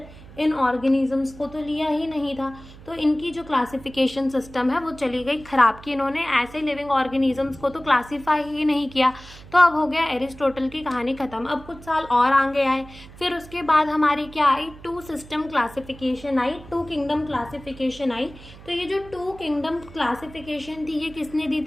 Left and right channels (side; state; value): right; noise; hum, 19 dB below the sound